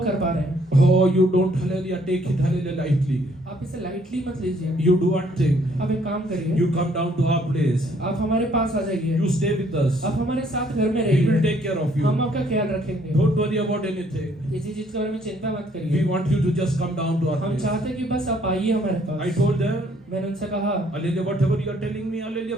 कर पा रहे हैं। Oh, you don't, hallelujah, take it, hallelujah, lightly. आप इसे लाइटली मत लीजिए। You do one thing. आप एक काम करिए, You come down to our place. आप हमारे पास आ जाइए, You stay with us. आप हमारे साथ घर में We will रहिए, take care of you. हम आपका ख्याल रखेंगे। Don't worry about anything. किसी चीज के बारे में चिंता मत We करिए। want you to just come down to our हम place. चाहते हैं कि बस आप आइए हमारे I पास। told them, मैंने उनसे कहा, hallelujah, whatever you are telling me, hallelujah,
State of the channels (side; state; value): both; normal; correlation 0.65